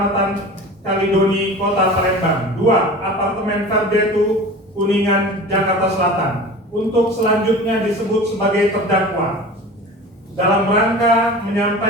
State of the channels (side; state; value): both; normal; correlation 0.36